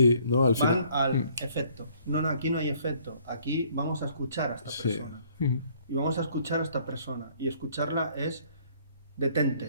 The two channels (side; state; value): both; inverted; correlation -0.61